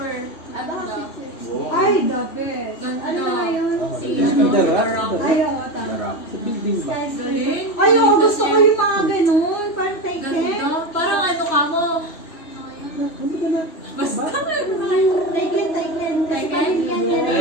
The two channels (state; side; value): late; right; 3.1 ms